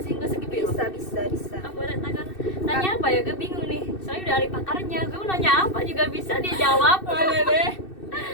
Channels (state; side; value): late; right; 2.6 ms